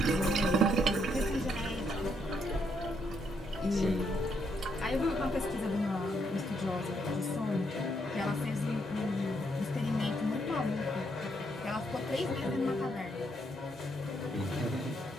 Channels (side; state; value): both; normal; correlation 0.75